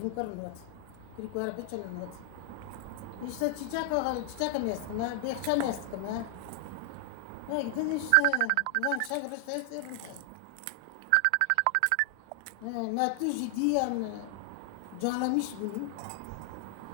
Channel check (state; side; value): different; both; correlation 0.00